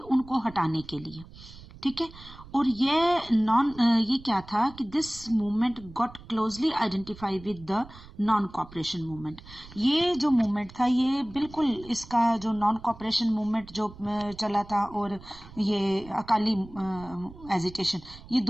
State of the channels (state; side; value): noise; right; rumble, 19 dB below the sound